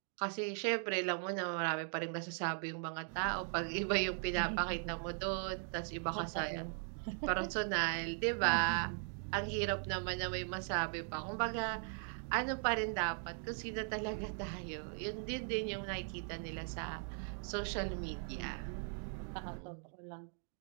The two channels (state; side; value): silent; left; 52 dB below the other